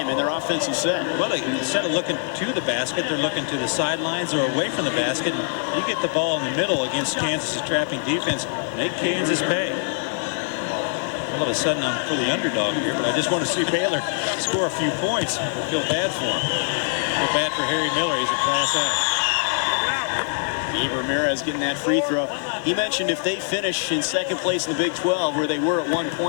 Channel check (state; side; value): silent; right; digital silence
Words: in their offensive set. Well, instead of looking to the basket, they're looking to the sidelines or away from the basket. And you get the ball in the middle against Kansas' trapping defense, make Kansas pay. All of a sudden, I'm for the underdog here, but I just want to see Baylor score a few points. I feel bad for him. I feel bad for Harry Miller. He's a class act. Gabe Ramirez getting that free throw. He mentioned if they finish in second place in the Big 12, where they were at one